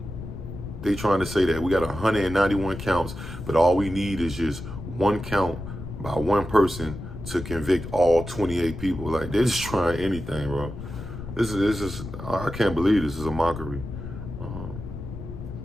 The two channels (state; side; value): noise; left; rumble, 10 dB below the sound